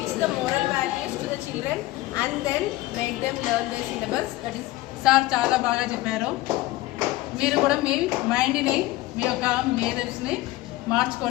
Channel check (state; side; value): quieter; right; 18.0 dB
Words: the moral values to the children and then make them learn their syllabus. That is. Sir చాలా బాగా చెప్పారు. మీరు కూడా మీ మైండ్ని మీ యొక్క మేధస్ని